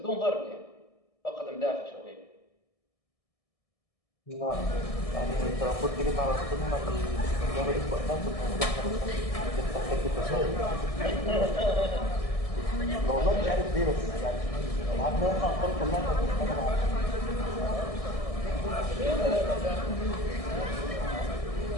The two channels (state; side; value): late; right; 1.6 ms